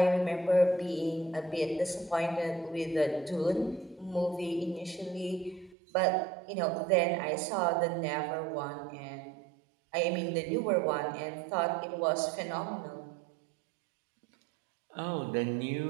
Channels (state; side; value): drops out; left; at 5.8 s